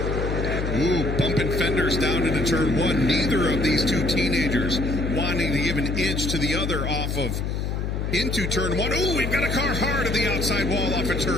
Ooh, bumping fenders down into turn 1. Neither of these 2 teenagers wanting to give an inch to the other off of into turn 1. Ooh, we've got a car hard at the outside wall off of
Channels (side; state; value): left; noise; hum, 2 dB below the sound